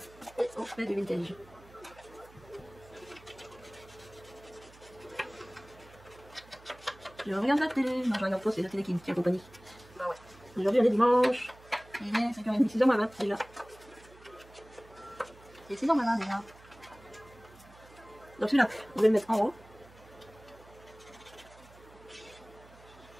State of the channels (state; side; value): noise; right; hum, 23 dB below the sound